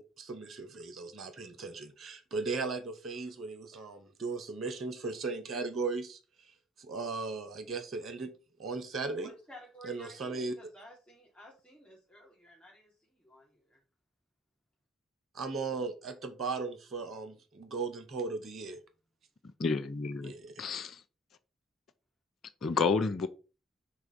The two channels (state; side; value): normal; both; correlation 0.42